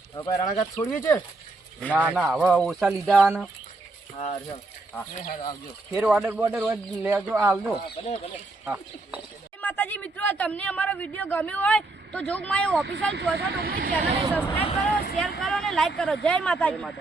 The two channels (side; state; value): left; quieter; 3.1 dB